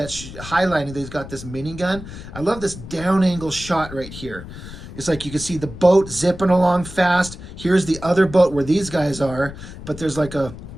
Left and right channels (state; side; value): noise; left; rumble, 13 dB below the sound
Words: highlighting that he's got this minigun. I love this down angle shot right here. It's like you can see the boat zipping along fast. Here's the other boat where these guys are. But there's like a